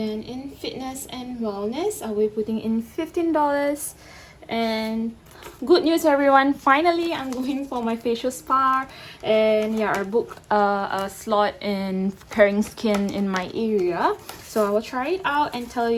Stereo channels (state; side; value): identical; both; correlation 1.00